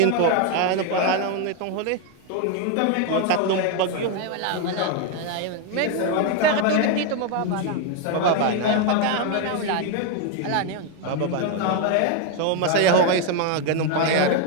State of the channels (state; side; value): different; both; correlation 0.01